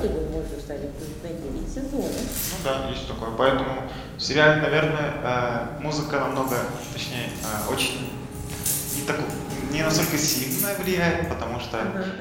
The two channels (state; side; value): identical; both; correlation 1.00